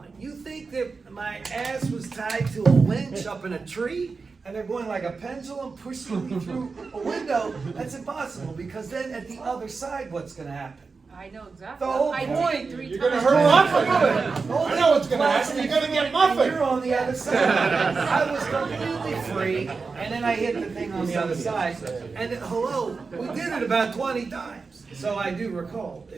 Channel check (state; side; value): quieter; left; 4.5 dB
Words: it. You think that my ass was tied to a winch up in a tree? And they're going like a pendulum pushing me through a window? That's impossible, because then at the other side, what's gonna happen? I know exactly. The whole I did point, it 3 You're times. gonna hurt muffin. I know what's gonna happen. You're gonna get muffin. You're on the other side. I was completely free, and then I hit the thing on the other side. And hello, we did it about 20 times. So I do recall,